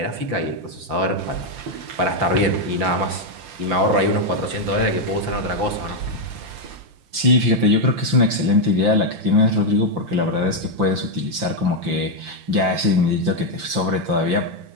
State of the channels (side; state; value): left; late; 5.7 ms